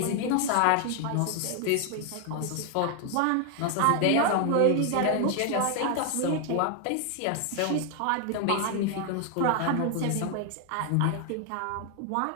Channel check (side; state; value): both; different; correlation 0.00